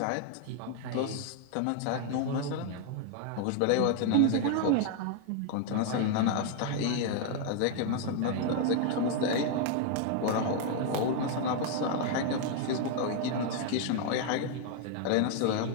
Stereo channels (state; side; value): different; both; correlation 0.00